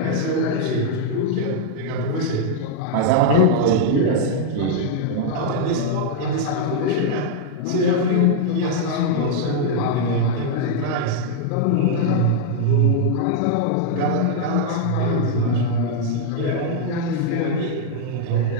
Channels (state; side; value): different; both; correlation -0.01